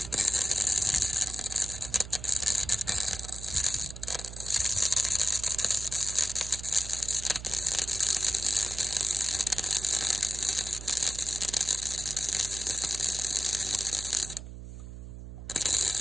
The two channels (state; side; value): noise; right; hum, 12 dB below the sound